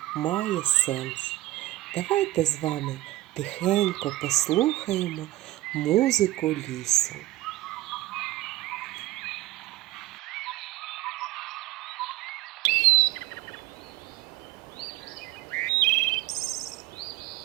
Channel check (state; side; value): quieter; left; 16.4 dB